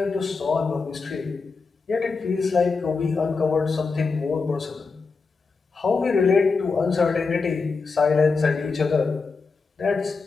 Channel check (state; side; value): quieter; right; 4.5 dB